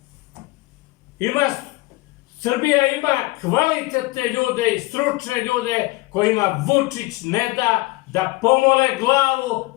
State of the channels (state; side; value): quieter; right; 22.2 dB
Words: Srbija ima kvalitetne ljude i stručne ljude kojima Vučić ne da pomole glavu